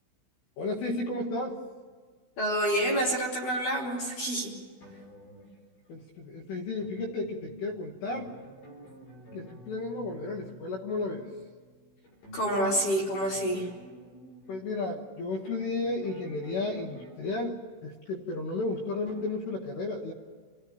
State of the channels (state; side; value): late; right; 16 ms